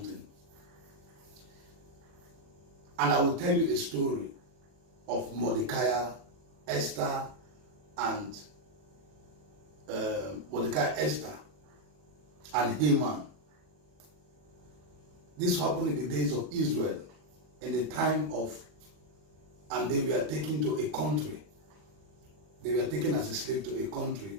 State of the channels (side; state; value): left; late; 40 ms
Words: And I will tell you a story of Mordecai, Esther, and Esther, and Haman. This happened in the days of Israel, in the time of, and they were taken to a country. They were taken as a slave to a country